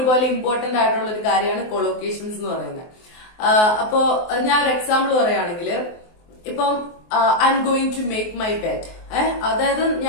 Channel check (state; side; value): late; right; 23 ms